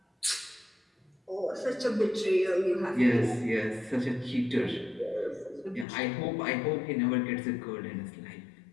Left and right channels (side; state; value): right; drops out; at 5.9 s